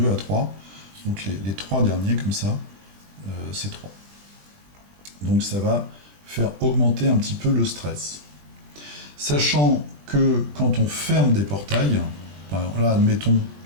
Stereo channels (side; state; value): left; late; 20 ms